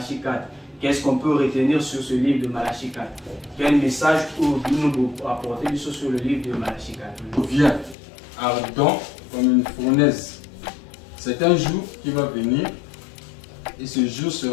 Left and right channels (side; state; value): right; drops out; at 8.0 s